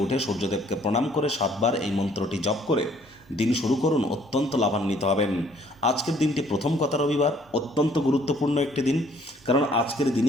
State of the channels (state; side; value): normal; both; correlation 0.61